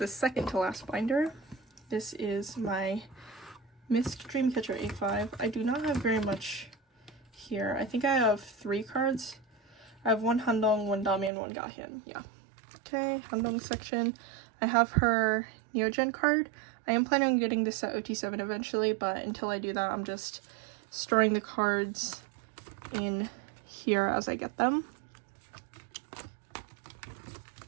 second to last binder. This is my misc Dreamcatcher A5. I do not have very much here. I think I have 3 cards. I have 1 handong, 1 dami, and 1 gahyun. Yeah. Okay, handong section. I have her Neogen card. I am planning on getting this at OT7 eventually, but until I do that, I'm just storing the cards in here as I get them.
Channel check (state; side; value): drops out; left; at 11.3 s